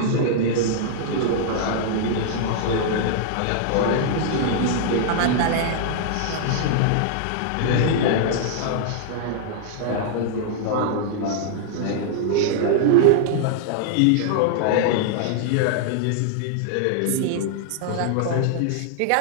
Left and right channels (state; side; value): different; both; correlation -0.01